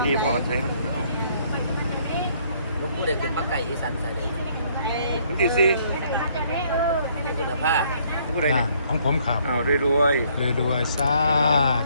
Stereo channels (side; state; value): both; inverted; correlation -0.65